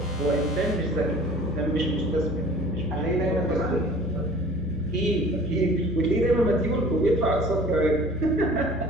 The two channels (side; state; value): both; normal; correlation 0.46